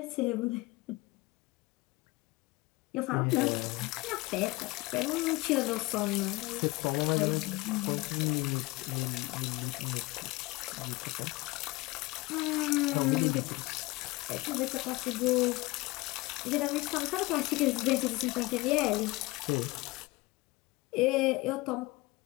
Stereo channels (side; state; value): right; quieter; 21.7 dB